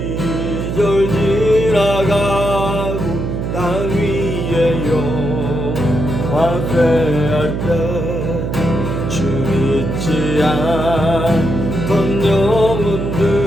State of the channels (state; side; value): noise; right; hum, 3 dB below the sound